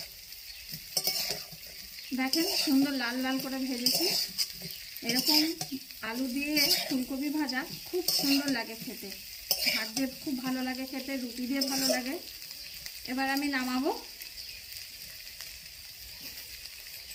দেখেন সুন্দর লাল লাল করে ভেজেছি। এরকম আলু দিয়ে ফুলকপি ভাজা খুব সুন্দর লাগে খেতে। ভাত দিয়ে খুব ভালো লাগে খেতে, রুটি দিয়ে ভালো লাগে। এবার আমি নামাবো।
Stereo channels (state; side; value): identical; both; correlation 1.00